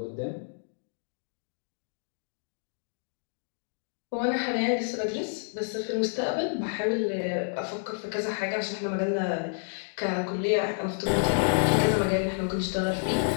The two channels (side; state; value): right; silent; digital silence